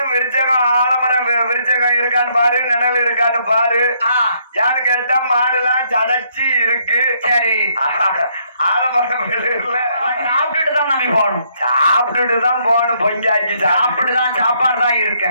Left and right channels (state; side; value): inverted; both; correlation -0.71